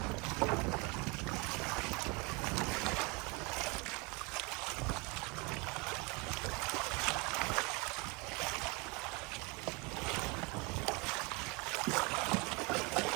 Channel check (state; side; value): quieter; left; 28.6 dB